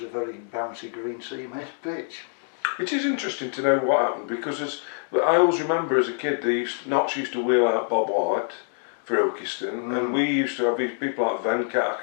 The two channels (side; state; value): right; silent; 61 dB below the other